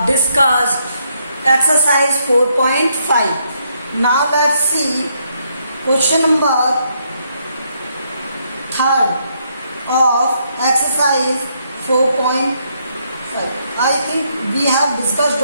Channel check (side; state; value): both; inverted; correlation -0.74